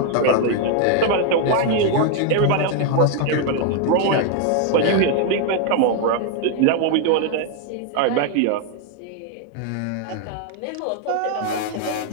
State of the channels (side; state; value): both; different; correlation 0.01